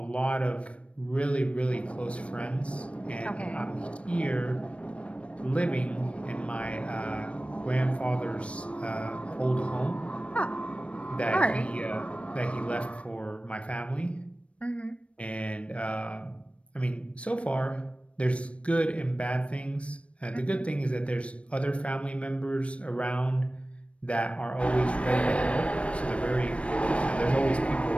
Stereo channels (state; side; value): late; right; 0.062 ms